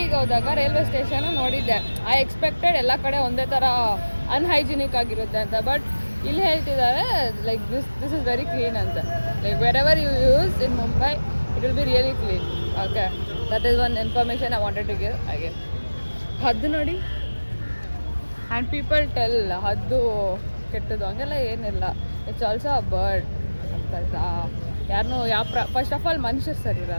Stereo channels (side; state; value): both; inverted; correlation -1.00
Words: ಹೋದಾಗ ರೈಲ್ವೆ ಸ್ಟೇಷನ್ ನೋಡಿದ್ದೆ. ಐ ಎಕ್ಸ್ಪೆಕ್ಟೆಡ್ ಎಲ್ಲ ಕಡೆ ಒಂದೇ ಥರ ಅನ್ಹೈಜಿನಿಕ್ ಆಗಿರುತ್ತೆ ಅಂತ. ಬಟ್ ಇಲ್ಲಿ ಹೇಳ್ತಿದ್ದಾರೆ like this is very clean ಅಂತ. Like wherever you use in Mumbai it will be really clean. Okay, that is one information I wanted to give. ಹಾಗೆ ಹದ್ದು ನೋಡಿ, ಆ್ಯಂಡ್ ಪೀಪಲ್ ಟೆಲ್ ಹದ್ದು ಕೆಟ್ಟದ್ದು ಹಂಗೆಲ್ಲ ಏನಿಲ್ಲ. It's also a bird. ಅರ್ಥ ಆಯ್ತಾ? ಯಾರನ್ನೂ ಫಸ್ಟ್ ಆಫ್ ಆಲ್ ಮನುಷ್ಯರು ಸರಿ